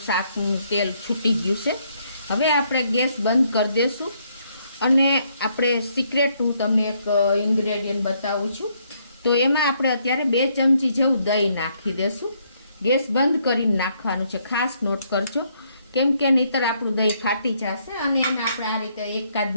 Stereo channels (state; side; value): inverted; both; correlation -0.71